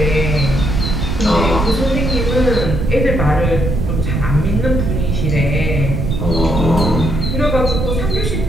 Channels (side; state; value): right; noise; rumble, 1 dB below the sound